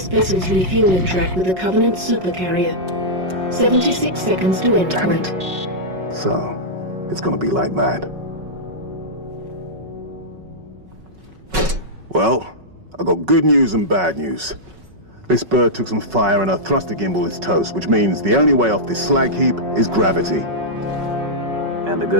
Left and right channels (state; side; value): late; left; 5.4 ms